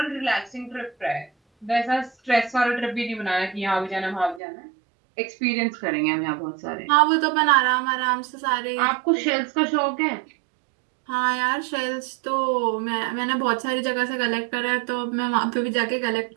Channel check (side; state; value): left; drops out; at 4.4 s